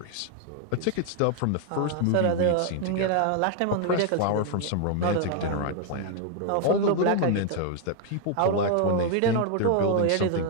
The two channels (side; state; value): both; different; correlation 0.00